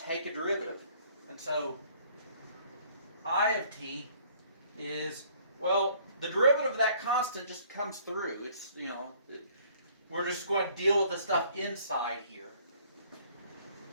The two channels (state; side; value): inverted; both; correlation -0.59